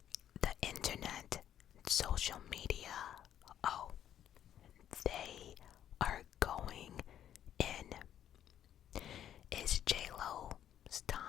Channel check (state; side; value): quieter; right; 10.6 dB